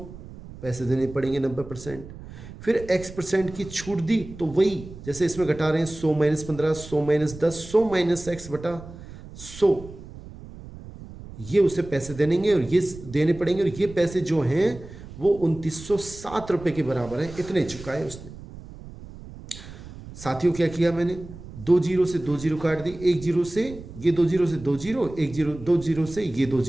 पैसे देने पड़ेंगे, 90%। फिर x% की छूट दी तो वही जैसे इसमें घटा रहे हैं, 100 माइनस 15, 100 माइनस 10, 100 माइनस x/100, ये उसे पैसे देंगे और ये देने पड़ेंगे, और ये पैसे जो हैं वो 2907 रुपये के बराबर हैं, इतने चुकाए उसने। साथियों, क्या किया मैंने? 2 जीरो से 2 जीरो काट दी, 1 जीरो से ये 2 जीरो से 2 जीरो, 1 जीरो 2 जीरो से ये 2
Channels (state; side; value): noise; right; rumble, 15 dB below the sound